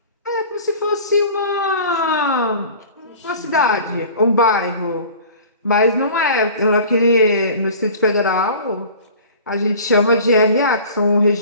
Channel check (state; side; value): inverted; both; correlation -0.43